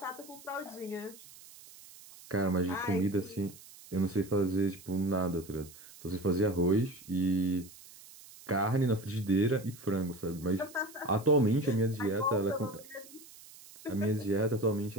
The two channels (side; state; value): right; noise; hiss, 20 dB below the sound